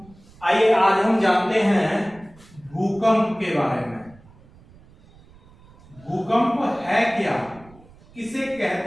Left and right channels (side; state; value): right; noise; rumble, 25 dB below the sound